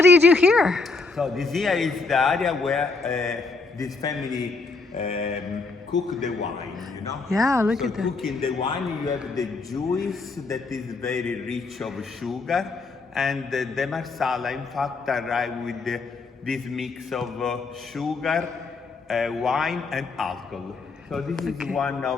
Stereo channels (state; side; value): quieter; right; 4.0 dB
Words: do you do here? So this here is the area where this family cook the wine, you know? Yeah, look at that. Cooking the wine, you have the juice that is very rich of sugar, and the Marsala, in fact, arrive with this mix of sugar, wine, and alcohol. So this is one